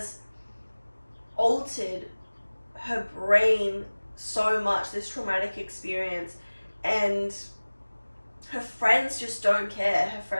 altered her brain so much, this traumatic experience, and her friends just don't care. Her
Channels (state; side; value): inverted; both; correlation -1.00